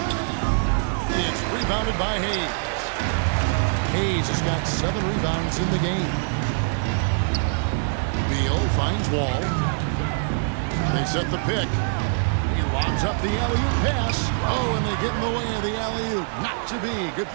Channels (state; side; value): silent; left; 63 dB below the other